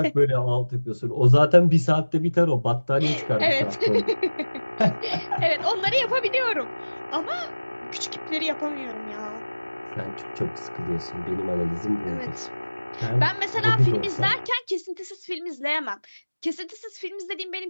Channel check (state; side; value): inverted; both; correlation -1.00